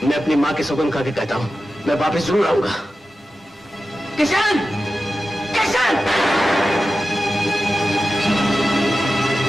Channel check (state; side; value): normal; both; correlation 0.93